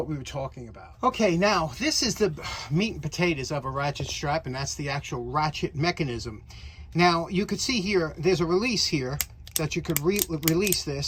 we were talking about. Okay, now this is the meat and potatoes of a ratchet strap, and that's the actual ratchet mechanism. Now you could see here, there's a release here that you could release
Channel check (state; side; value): identical; both; correlation 1.00